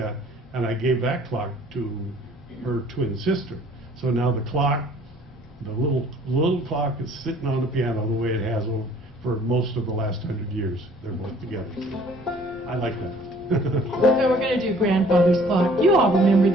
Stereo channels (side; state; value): both; normal; correlation 0.55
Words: and I gave that clock to her twin sister. So now the clock, the little clock is sitting on the piano the way it has for most of the last 100 years. They're both together. I like that. So we're going to do grandfather's clock. You all remember